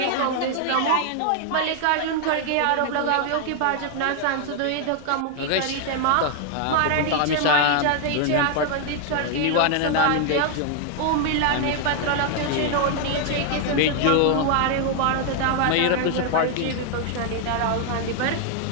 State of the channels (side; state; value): both; different; correlation 0.00